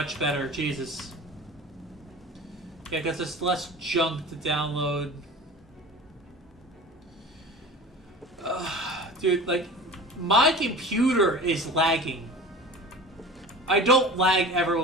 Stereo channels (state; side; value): normal; both; correlation 0.37